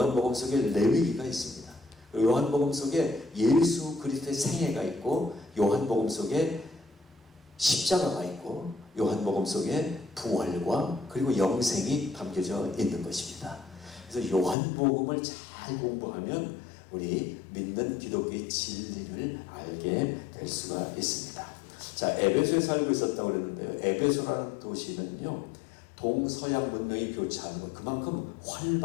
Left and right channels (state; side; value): drops out; right; at 14.6 s